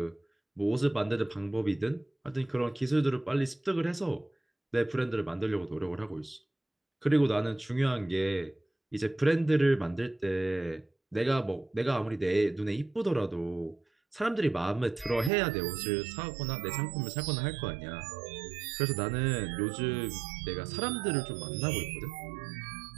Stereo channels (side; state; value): left; drops out; at 15.3 s